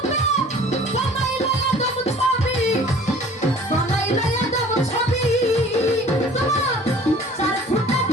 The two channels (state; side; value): normal; both; correlation 0.49